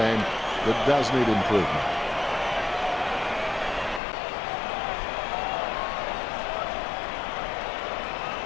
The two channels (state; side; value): drops out; right; at 4.0 s